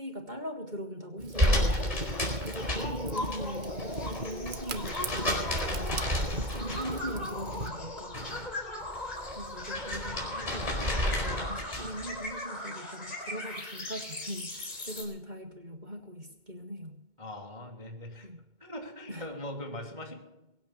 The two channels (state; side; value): late; left; 2.2 ms